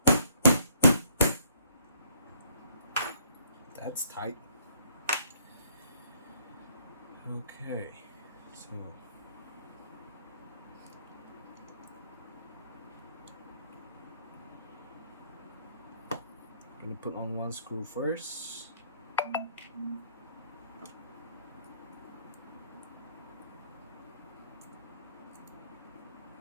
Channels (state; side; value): inverted; both; correlation -0.65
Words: That's tight. Okay, so I'm gonna put on one screw first.